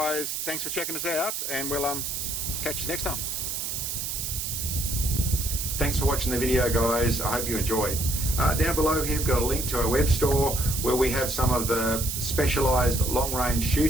thanks for checking us out, and we'll catch you next time. Thanks for watching the video guys, I hope you enjoyed. Down below here we've got a link to our web store where we have some of the specialised long-range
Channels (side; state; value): right; noise; hiss, 3 dB below the sound